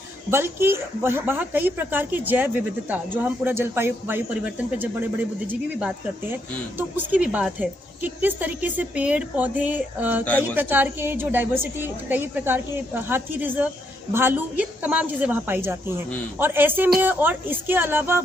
बल्कि वहाँ कई प्रकार की जैव विविधता, जो हम पूरा जलवायु परिवर्तन पर जब बड़े बड़े बुद्धिजीवी भी बात करते हैं तो उसकी भी बात है कि किस तरीके से पेड़ पौधे, कई प्रकार के जो डाइवर्सिटी, कई प्रकार के हाथी रिजर्व, भालू, ये तमाम चीजें वहाँ पाई जाती हैं। और ऐसे में, और इसके अलावा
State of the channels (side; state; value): both; normal; correlation 0.76